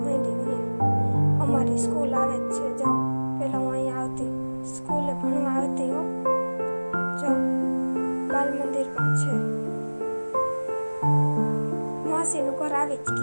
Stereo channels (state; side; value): inverted; both; correlation -1.00